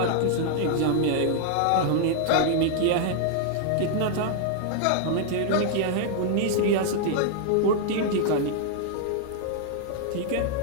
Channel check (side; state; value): both; different; correlation -0.01